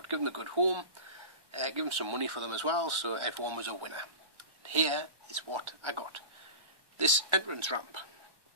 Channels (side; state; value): left; late; 1.2 ms